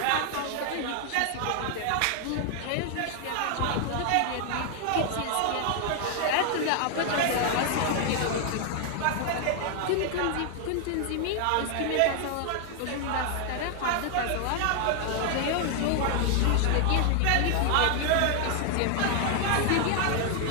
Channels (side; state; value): both; different; correlation 0.00